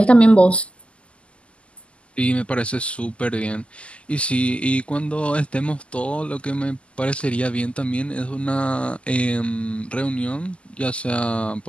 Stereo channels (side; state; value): right; late; 0.056 ms